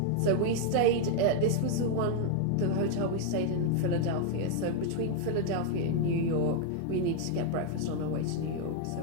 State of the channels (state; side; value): different; both; correlation 0.00